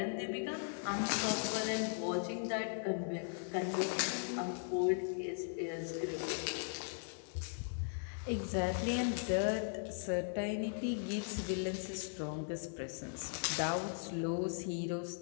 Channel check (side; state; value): right; silent; digital silence